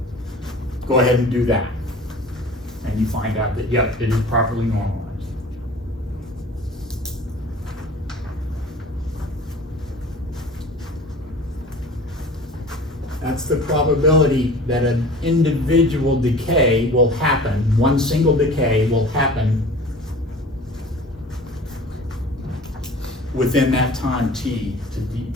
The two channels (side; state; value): both; normal; correlation 0.42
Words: go ahead and do that. And you find out that, yep, it is properly normalized. That's the probability that an individual decay will happen, one single decay will happen within that time t